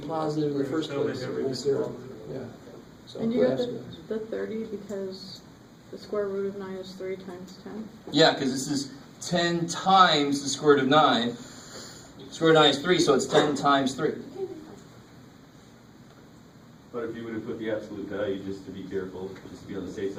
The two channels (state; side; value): identical; both; correlation 1.00